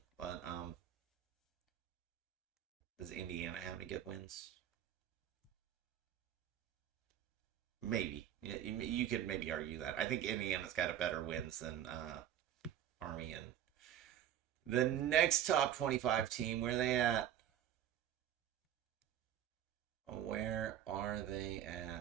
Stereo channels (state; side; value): quieter; left; 10.7 dB